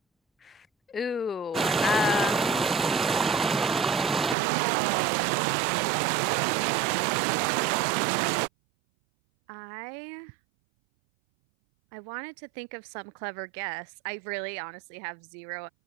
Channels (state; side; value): drops out; left; at 4.4 s